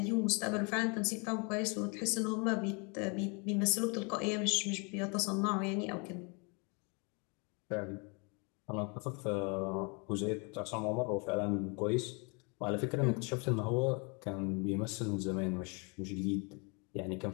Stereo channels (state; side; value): quieter; right; 32.9 dB